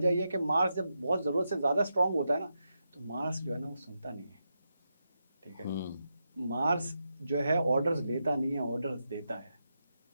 ये है कि मार्स जब बहुत ज़रूरत से ज़्यादा स्ट्रॉन्ग होता है ना, तो मार्स जो है ना वो सुनता नहीं है। ठीक है, मार्स जो है ऑर्डर्स लेता नहीं है, ऑर्डर्स देता है।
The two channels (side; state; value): both; inverted; correlation -0.86